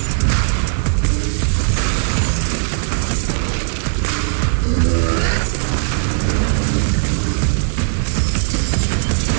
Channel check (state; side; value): silent; left; 60 dB below the other